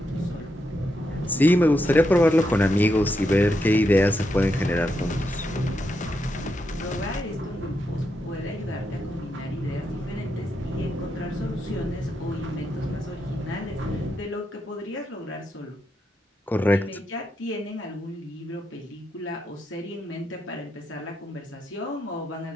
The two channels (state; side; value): normal; both; correlation 0.82